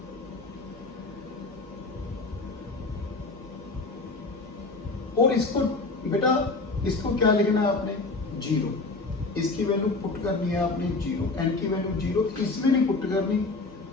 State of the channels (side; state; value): right; quieter; 3.5 dB